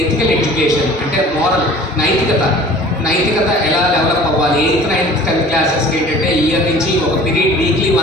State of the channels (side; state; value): both; normal; correlation 0.46